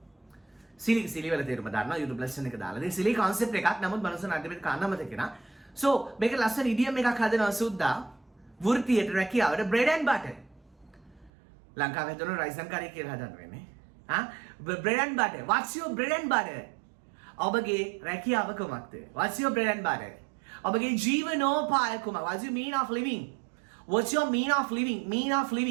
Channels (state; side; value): drops out; left; at 11.3 s